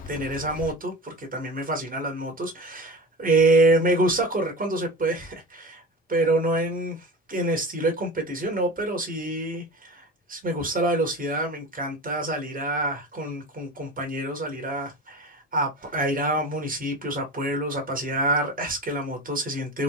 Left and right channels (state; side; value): normal; both; correlation 0.31